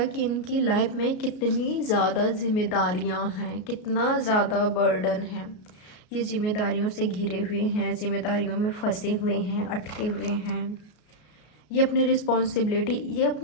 कि इनकी लाइफ में कितनी ज़्यादा जिम्मेदारियां हैं, कितना ज़्यादा बर्डन है। ये जिम्मेदारियों से घिरे हुए हैं, जिम्मेदारियों में फंसे हुए हैं, अटके हुए हैं। ये अपनी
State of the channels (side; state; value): right; late; 33 ms